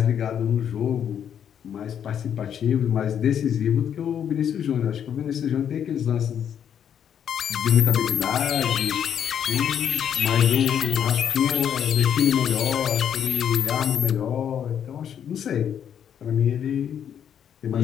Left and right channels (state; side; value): quieter; right; 8.8 dB